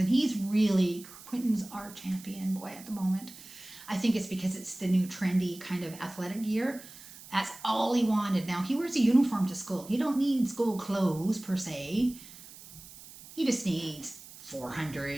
Quentin's our champion boy at the moment. I think it's because it's the new trendy kind of athletic gear. That's all he wanted. Now he wears a uniform to school. He don't need school clothes per se. He just needs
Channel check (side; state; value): right; noise; hiss, 18 dB below the sound